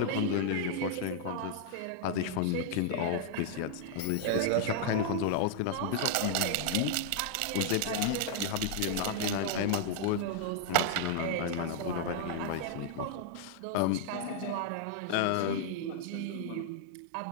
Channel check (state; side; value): different; both; correlation -0.01